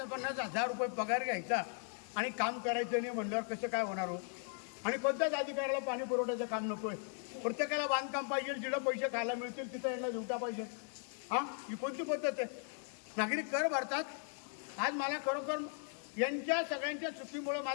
रुपये पगार घ्यायचा आणि काम करायचं नाही म्हणल्यावर कसं काय होणार हो. आणि कोणत्याच अधिकाऱ्याला पाणी पुरवठ्याचं काम नको आहे, प्रत्येकाला बांधकाम पाहिजे, जिथं पैसे खायला मिळतील तिथं यांना झुटा पाहिजे. हां ही कोणती पद्धत आहे. नागरिक कर भरतात. आज मला खरोखर यांच्या सगळ्यांच्या चुकीमुळे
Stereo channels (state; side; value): silent; right; 53 dB below the other